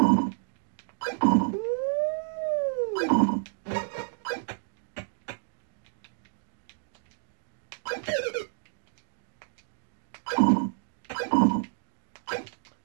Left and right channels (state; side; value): silent; left; digital silence